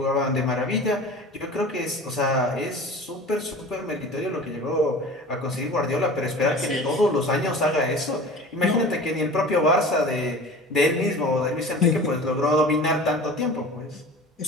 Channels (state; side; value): normal; both; correlation 0.39